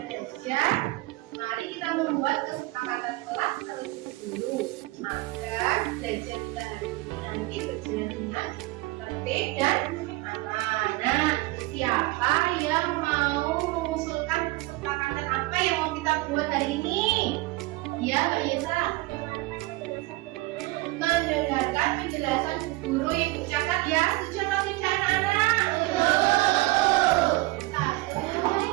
belajar, mari kita membuat kesepakatan kelas terlebih dahulu agar belajar kita hari ini nanti berjalan dengan tertib dan aman. Nah, siapa yang mau mengusulkan kesepakatan apa yang mau kita buat hari ini? Ya, Mbak Yesa. Mendengarkan penjelasan guru yang catat ya. Setuju atau tidak anak-anak? Satu,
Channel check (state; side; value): quieter; left; 20.9 dB